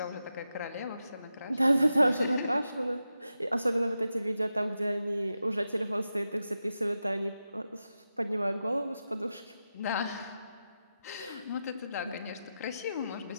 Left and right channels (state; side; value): inverted; both; correlation -0.90